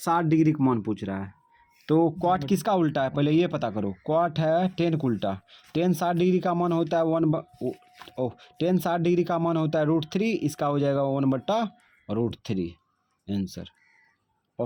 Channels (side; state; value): both; identical; correlation 1.00